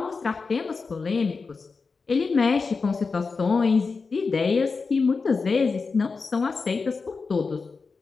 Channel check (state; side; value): quieter; right; 4.6 dB